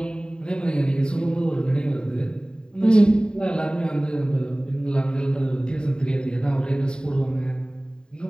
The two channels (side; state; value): right; late; 0.048 ms